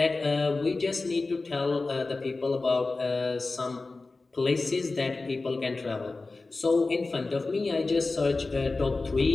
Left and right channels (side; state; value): right; quieter; 3.6 dB